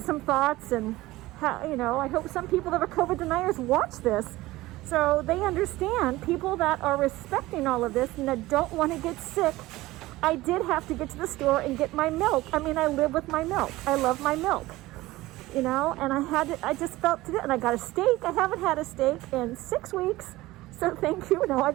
thoughts, and you know, I hope some people that are COVID deniers watch this so they understand, people that are respecting all of this and that don't want to get sick. I did have to get to the store and get my milk. I mean, I live with my milk. I love my milk, you know, and I just felt to it, and I got a steak. I haven't had a steak in 6 weeks, so thank you. No, I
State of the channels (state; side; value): quieter; left; 18.3 dB